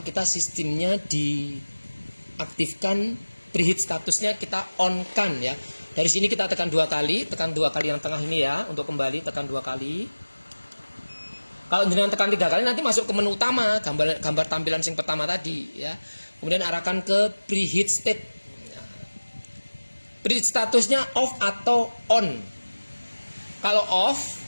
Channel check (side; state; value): both; inverted; correlation -1.00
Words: kita sistemnya diaktifkan, preheat statusnya kita on kan ya. Dari sini kita tekan 2 kali, yang tengah ini ya, untuk kembali tekan 2 kali. Kalau jenengan tekan 3 kali nanti masuk ke menu utama, gambar tampilan yang pertama tadi ya. Kemudian arahkan ke preheat state. Preheat statusnya off atau on. Kalau off,